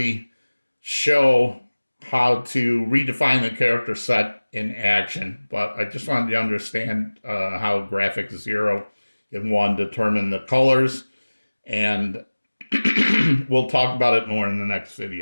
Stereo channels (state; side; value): inverted; both; correlation -1.00